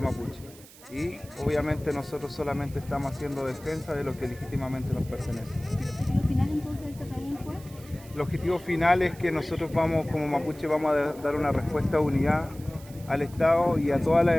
mapuche. Y obviamente nosotros solamente estamos haciendo defensa de lo que legítimamente nos pertenece. ¿El objetivo final entonces de este Trabún fue? El objetivo final es que nosotros vamos, como mapuche, vamos a dar una respuesta de unidad al Estado y a todas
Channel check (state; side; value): noise; right; hiss, 21 dB below the sound